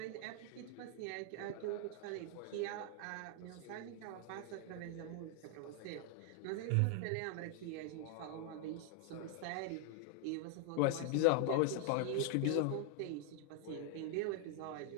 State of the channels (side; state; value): both; different; correlation 0.00